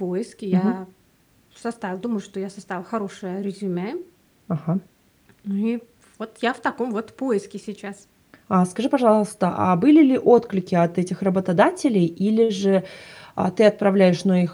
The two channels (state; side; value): identical; both; correlation 1.00